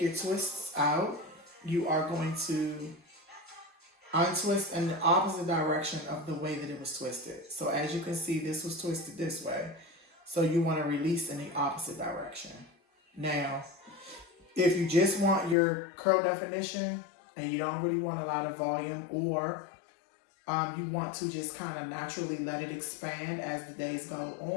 twists out, you are going to untwist in the opposite direction of the way that it was twisted. So as you can see, this was twisted this way. So you want to release in the opposite direction. Now, if you just want your curl definition and you don't really want a lot of volume, or you want to just kind of naturally let it expand as the days go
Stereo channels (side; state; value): right; drops out; at 15.6 s